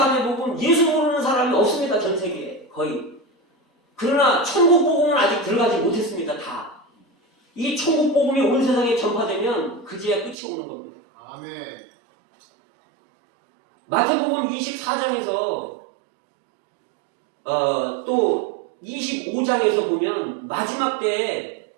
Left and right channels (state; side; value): drops out; left; at 10.4 s